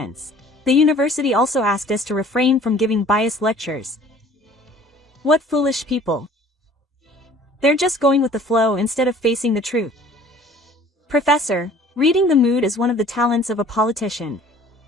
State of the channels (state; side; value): normal; both; correlation 0.51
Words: The university also asked us to refrain from giving biased lectures. What foolish people. They're just going with the flow instead of facing the truth. Professor, reading the mood is one of the talents of a politician.